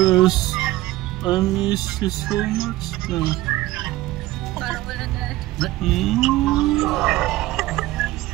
I miss you so much na. Parang wala na.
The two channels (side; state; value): left; quieter; 17.0 dB